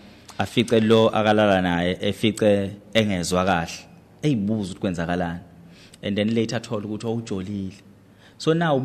afice lo akalala naye efice engezwa kahle eyibuza ukuthi kwenzakalani and then later athola ukuthi awujolile so now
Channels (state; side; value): identical; both; correlation 1.00